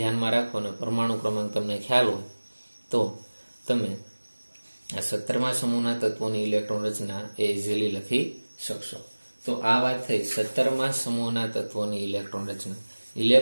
રાખો અને પરમાણુ ક્રમાંક તમને ખ્યાલ હોય તો તમે આ 17મા સમૂહના તત્વોની ઇલેક્ટ્રોન રચના એ ઇઝીલી લખી શકશો. તો આ વાત થઈ 17મા સમૂહના તત્વોની ઇલેક્ટ્રોન રચના.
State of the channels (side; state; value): both; inverted; correlation -1.00